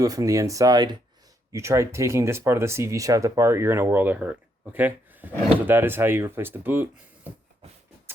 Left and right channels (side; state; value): both; normal; correlation 0.75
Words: it from the inside. You try taking this part of the CV shaft apart, you're in a world of hurt, okay? So that is how you replace the boot.